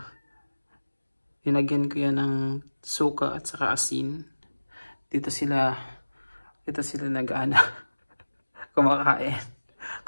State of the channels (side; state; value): both; inverted; correlation -1.00